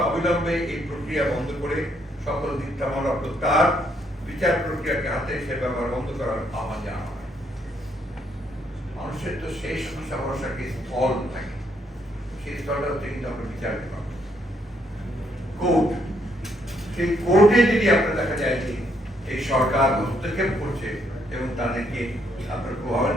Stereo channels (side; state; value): both; normal; correlation 0.72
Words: অবিলম্বে এই প্রক্রিয়া বন্ধ করে সকল মিথ্যা মামলা প্রত্যাহার, বিচার প্রক্রিয়াকে হাতে সে ব্যবহার বন্ধ করার আহ্বান জানানো হয়। মানুষের তো শেষ আশা ভরসাকে স্থল থাকে, সেই স্থলটা হচ্ছে কিন্তু আমরা বিচার বিভাগ, কোর্ট। সেই কোর্টে যদি আপনার দেখা যায় যে এই সরকার হস্তক্ষেপ করছে এবং তাদেরকে আপনার